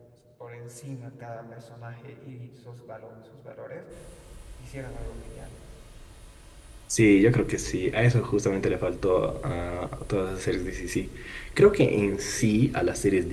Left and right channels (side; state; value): both; identical; correlation 1.00